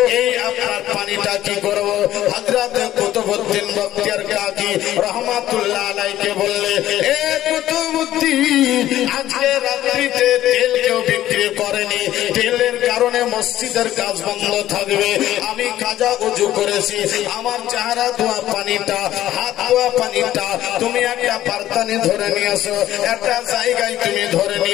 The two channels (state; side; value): quieter; right; 13.4 dB